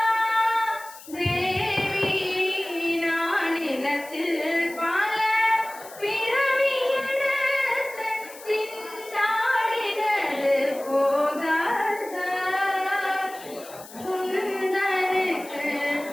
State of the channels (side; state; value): left; noise; hiss, 18 dB below the sound